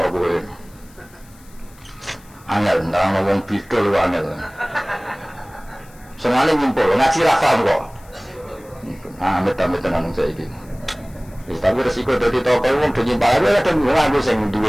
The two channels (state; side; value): noise; left; hiss, 27 dB below the sound